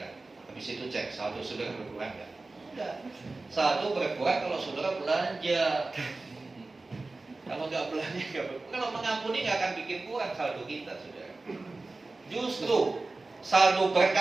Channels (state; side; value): quieter; left; 3.4 dB